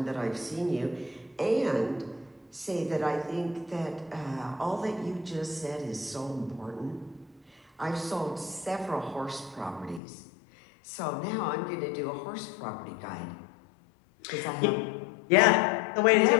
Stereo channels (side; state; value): right; drops out; at 10.0 s